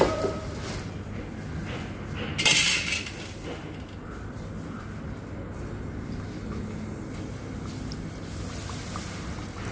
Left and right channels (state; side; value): identical; both; correlation 1.00